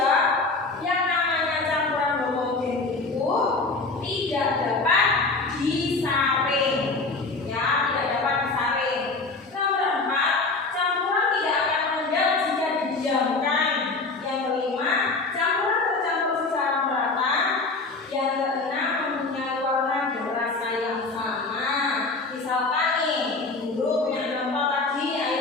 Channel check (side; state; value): right; quieter; 3.7 dB